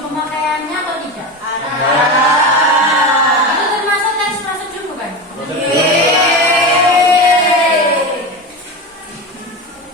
pemakaiannya atau tidak? ada. Itu termasuk teks prosedur bukan?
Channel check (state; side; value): normal; both; correlation 0.23